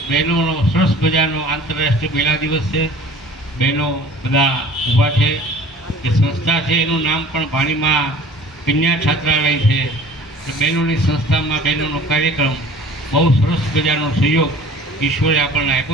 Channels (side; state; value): both; normal; correlation 0.47